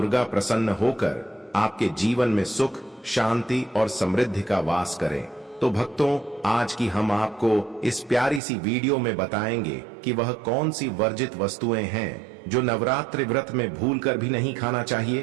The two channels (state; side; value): drops out; left; at 8.4 s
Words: प्रसन्न होकर आपके जीवन में सुख, शांति और समृद्धि का वास करें। तो भक्तों, आज की हम आपको इस प्यारी सी वीडियो में बताएंगे कि वह कौन सी वर्जित वस्तुएं हैं जो नवरात्रि व्रत में भूलकर भी नहीं खाना